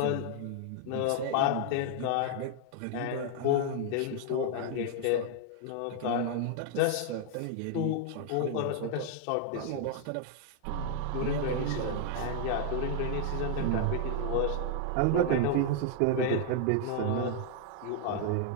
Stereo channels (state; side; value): different; both; correlation 0.00